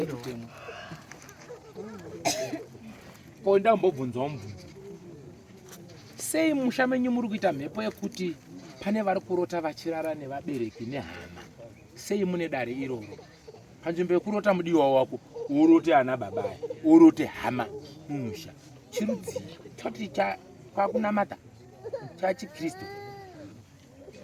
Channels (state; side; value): identical; both; correlation 1.00